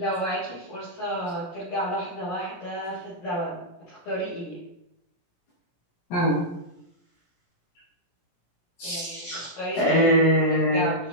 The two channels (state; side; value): late; right; 17 ms